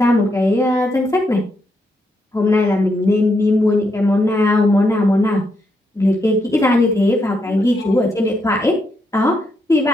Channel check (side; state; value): both; normal; correlation 0.80